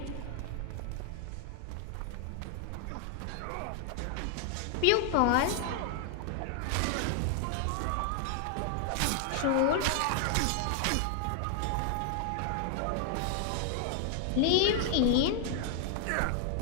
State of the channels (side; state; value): both; different; correlation 0.00